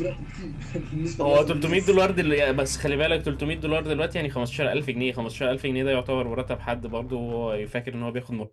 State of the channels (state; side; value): identical; both; correlation 1.00